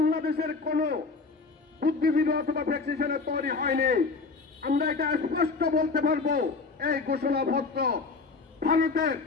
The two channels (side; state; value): right; quieter; 4.3 dB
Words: কোন বুদ্ধিজীবী অথবা প্র্যাকটিশনার তৈরি হয়নি। আমরা এটা স্পষ্ট বলতে পারবো, এই ঘোষণাপত্র ভারতের